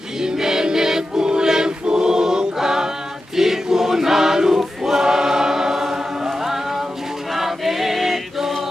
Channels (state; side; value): normal; both; correlation 0.91